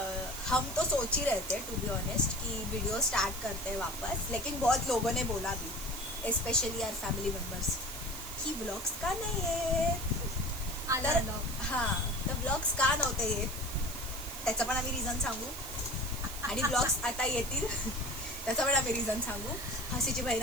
हम तो सोच ही रहे थे टू बी ऑनेस्ट कि वीडियो स्टार्ट करते हैं वापस, लेकिन बहुत लोगों ने बोला भी, स्पेशली आवर फॅमिली मेंबर्स, की ब्लॉग्स का नाही येत। तर हां, तर ब्लॉग्स का नव्हते येत त्याचं पण आम्ही रिझन सांगू, आणि ब्लॉग्स आता येतील त्याचं पण आम्ही रिझन सांगू। हसीची बहीण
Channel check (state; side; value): noise; right; hiss, 9 dB below the sound